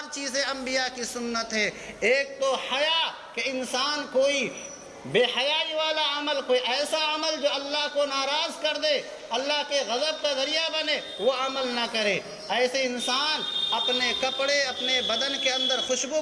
چیزیں انبیاء کی سنت ہے۔ ایک تو حیا، کہ انسان کوئی بے حیائی والا عمل، کوئی ایسا عمل جو اللہ کو ناراض کر دے، اللہ کے غضب کا ذریعہ بنے، وہ عمل نہ کرے۔ ایسے انسان اپنے کپڑے، اپنے بدن کے اندر خوشبو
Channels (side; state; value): both; identical; correlation 1.00